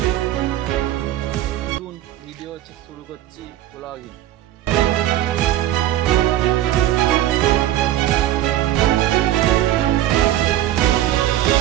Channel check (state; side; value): quieter; left; 13.2 dB